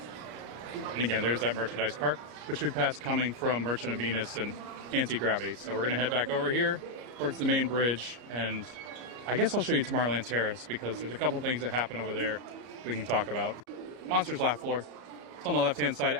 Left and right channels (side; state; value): left; late; 33 ms